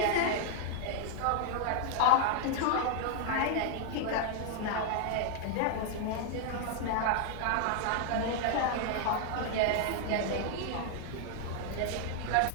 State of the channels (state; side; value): different; both; correlation 0.00